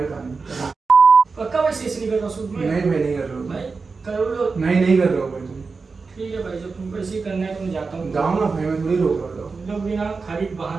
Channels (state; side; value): quieter; left; 4.5 dB